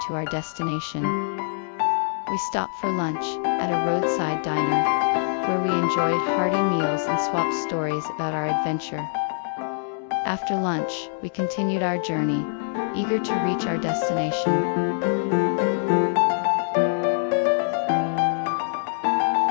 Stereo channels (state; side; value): silent; right; digital silence